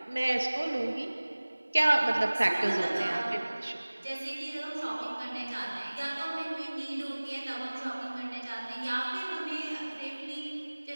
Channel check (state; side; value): inverted; both; correlation -1.00